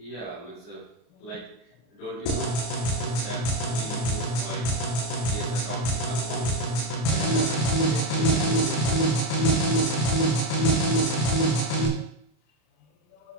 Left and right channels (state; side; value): late; right; 33 ms